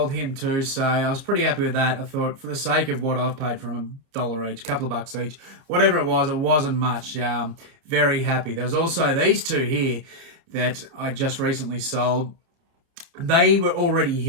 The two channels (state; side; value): late; left; 30 ms